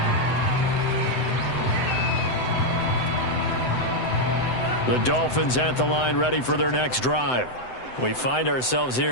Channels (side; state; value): right; late; 7.9 ms